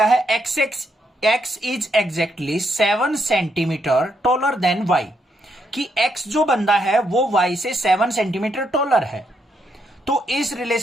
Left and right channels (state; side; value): normal; both; correlation 0.78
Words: है, X is exactly 7 centimetre taller than Y. कि x जो बंदा है वो y से 7 सेंटीमीटर टॉलर है। तो इस